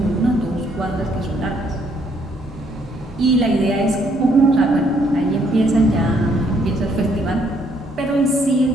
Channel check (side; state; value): both; normal; correlation 0.69